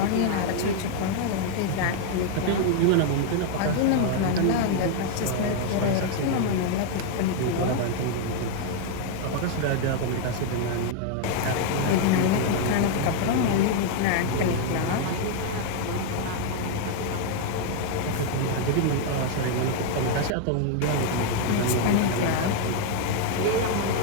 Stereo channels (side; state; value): both; different; correlation 0.00